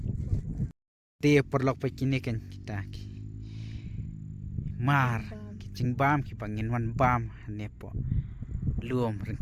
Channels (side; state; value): both; identical; correlation 1.00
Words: dia perlok pe kini kan kita mar kicing bam ki pangin wan bam ne po luom